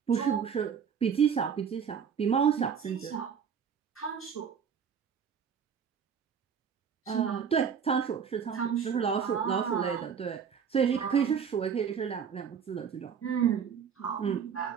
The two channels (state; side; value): quieter; left; 7.1 dB